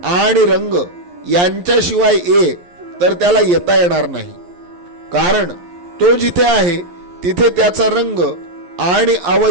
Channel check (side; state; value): left; late; 11 ms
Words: आणि रंग यांच्याशिवाय ये, तर त्याला येता येणार नाही, कारण तो जिथे आहे तिथे त्याचा रंग आणि